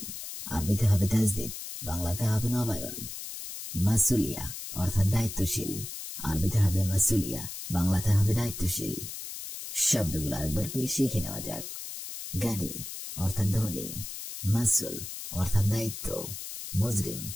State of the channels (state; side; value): noise; left; hiss, 8 dB below the sound